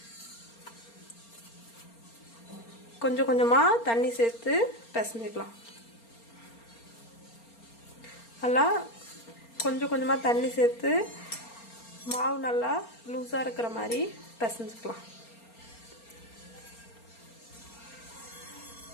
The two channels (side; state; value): right; late; 4.3 ms